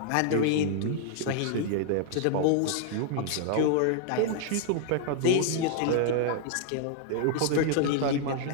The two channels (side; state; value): both; different; correlation 0.00